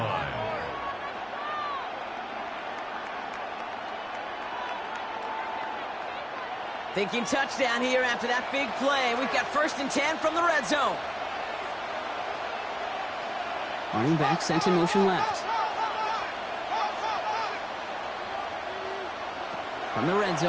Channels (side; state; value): both; identical; correlation 1.00